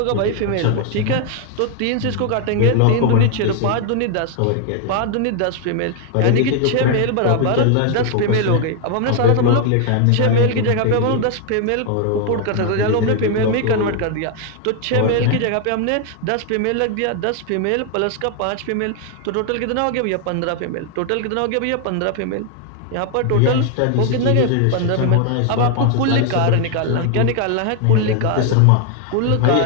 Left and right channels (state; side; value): different; both; correlation 0.00